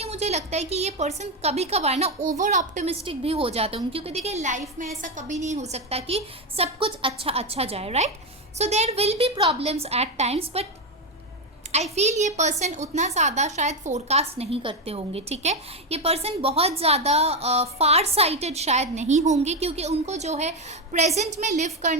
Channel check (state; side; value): normal; both; correlation 0.09